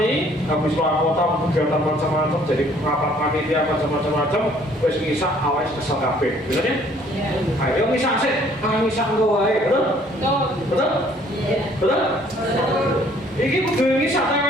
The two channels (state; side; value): normal; both; correlation 0.60